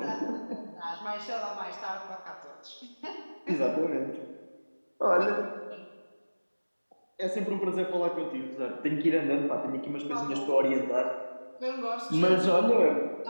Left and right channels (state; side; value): inverted; both; correlation -1.00